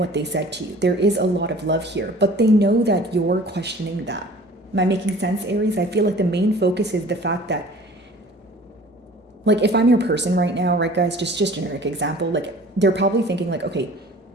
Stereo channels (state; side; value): normal; both; correlation 0.47